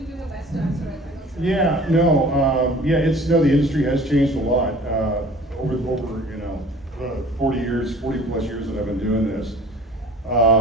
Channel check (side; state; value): both; normal; correlation 0.47